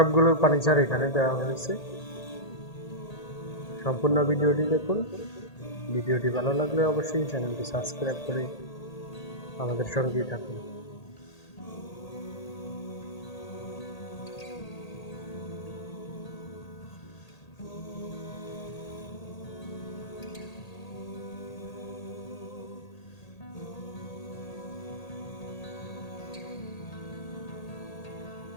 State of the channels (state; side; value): late; right; 1.8 ms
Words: ফার্নিচার এখানে দেওয়া হয়েছে। সম্পূর্ণ ভিডিওটি দেখুন। ভিডিওটি ভালো লাগলে অবশ্যই চ্যানেলটি সাবস্ক্রাইব করে আমাদের সঙ্গেই থাকুন।